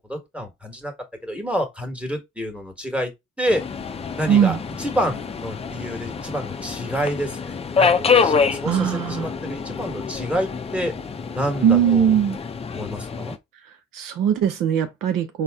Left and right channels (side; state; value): both; normal; correlation 0.45